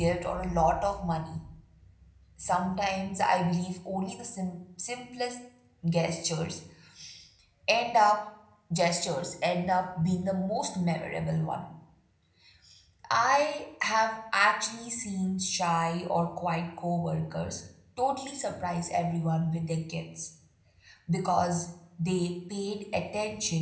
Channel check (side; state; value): both; identical; correlation 1.00